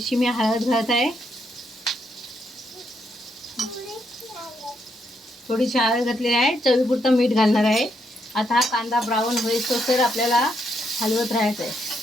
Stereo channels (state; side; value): normal; both; correlation 0.77